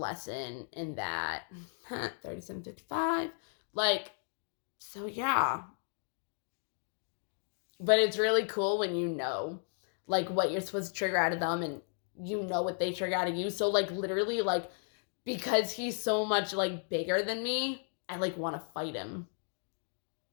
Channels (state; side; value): silent; right; 55 dB below the other